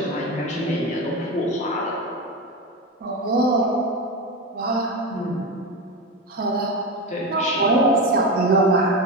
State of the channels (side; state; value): both; normal; correlation 0.18